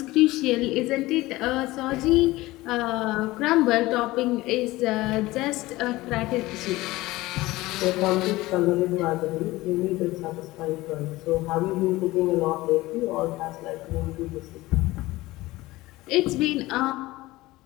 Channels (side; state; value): right; quieter; 19.0 dB